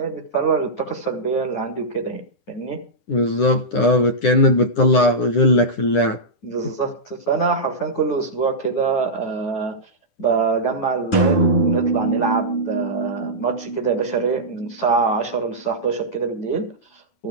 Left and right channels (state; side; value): late; right; 10 ms